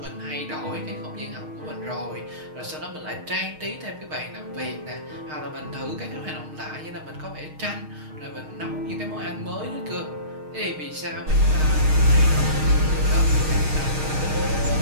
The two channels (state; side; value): late; left; 6.4 ms